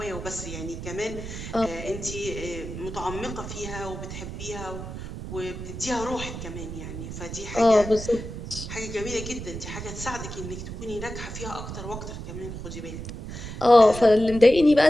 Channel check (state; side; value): noise; right; rumble, 8 dB below the sound